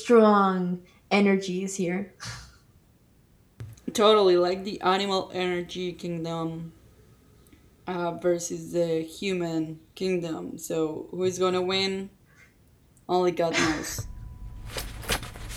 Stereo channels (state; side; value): identical; both; correlation 1.00